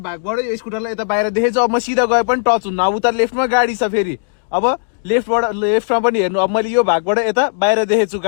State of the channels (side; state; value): right; silent; digital silence